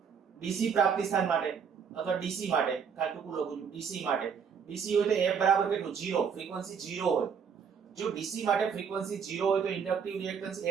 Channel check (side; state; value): left; quieter; 6.7 dB